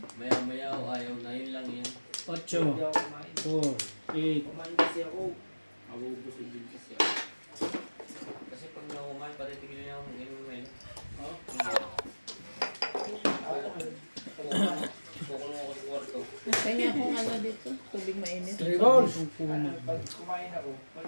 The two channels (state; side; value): inverted; both; correlation -1.00